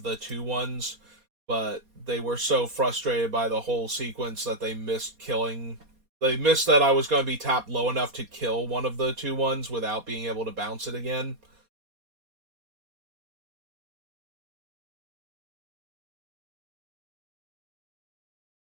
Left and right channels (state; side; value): late; left; 4.2 ms